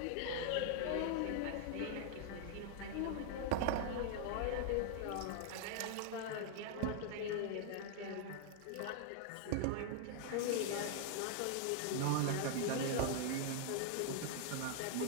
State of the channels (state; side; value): different; both; correlation 0.00